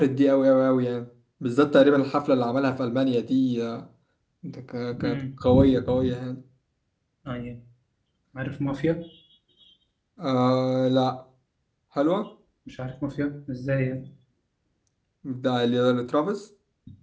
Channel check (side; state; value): both; identical; correlation 1.00